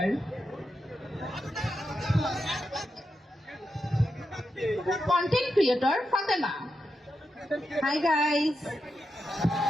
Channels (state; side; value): normal; both; correlation 0.87